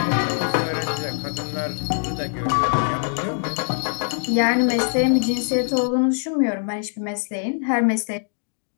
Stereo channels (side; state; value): right; silent; digital silence